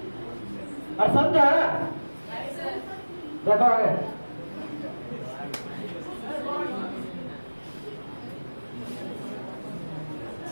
और समझा देखो आगे।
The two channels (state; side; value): inverted; both; correlation -1.00